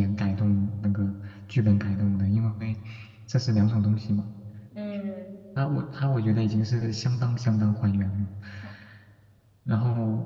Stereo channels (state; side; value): identical; both; correlation 1.00